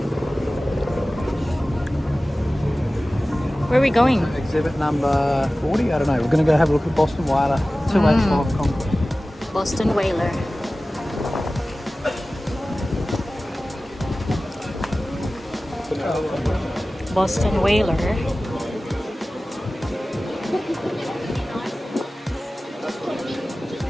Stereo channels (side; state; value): both; normal; correlation 0.96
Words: Where are we going? Exhibit number 40. I don't know. We're going to go have a look at Boston Whaler 285 concrete. Boston Whaler. Boston Whaler.